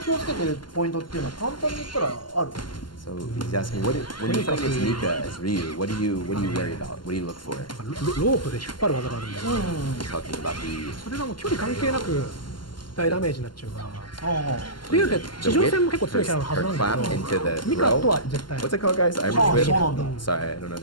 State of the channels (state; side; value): late; right; 0.71 ms